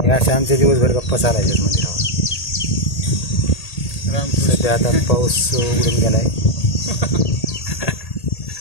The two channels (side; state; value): right; late; 1.8 ms